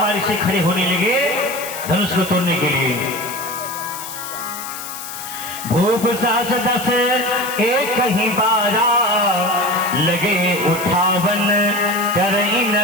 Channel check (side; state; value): left; noise; hiss, 10 dB below the sound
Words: से खड़े होने लगे धनुष को तोड़ने के लिए। भूप सास 10 एक ही बारा, लगे उठावन करई